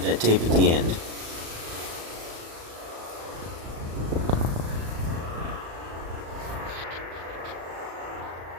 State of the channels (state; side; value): late; left; 36 ms